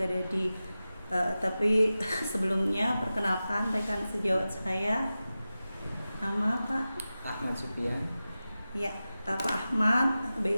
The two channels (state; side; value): inverted; both; correlation -0.95